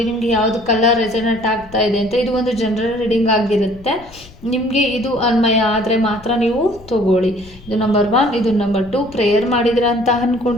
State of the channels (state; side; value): noise; left; rumble, 21 dB below the sound